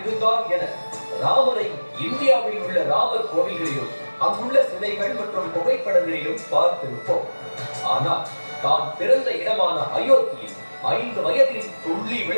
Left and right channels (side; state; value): both; inverted; correlation -1.00